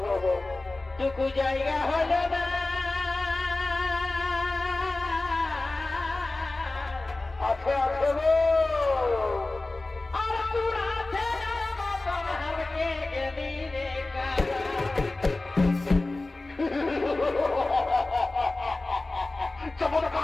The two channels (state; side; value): quieter; right; 3.1 dB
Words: টুকু জায়গা হল না আছে গো আর তোর আছে মতন হারকে গেলি রে কারা